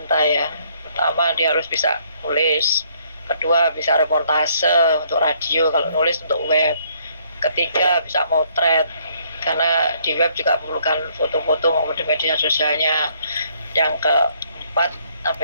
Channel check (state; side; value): inverted; both; correlation -0.66